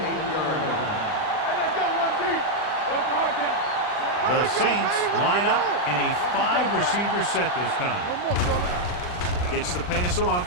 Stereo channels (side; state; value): right; late; 39 ms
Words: line. Hey, let's go 1 deep. What's the hard count? The Saints line up in a 5-receiver set this time. Gets the pass off.